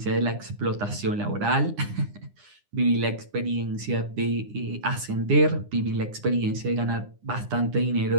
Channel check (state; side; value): late; left; 9.8 ms